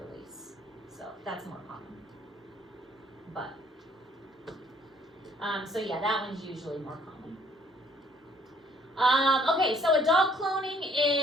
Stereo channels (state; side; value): normal; both; correlation 0.62